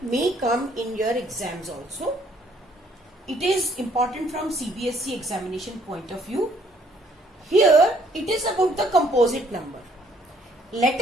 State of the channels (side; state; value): both; normal; correlation 0.65